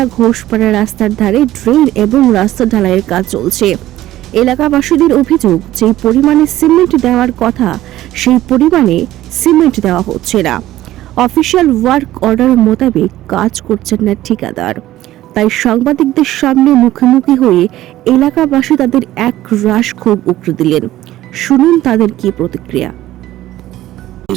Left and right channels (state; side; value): quieter; left; 14.7 dB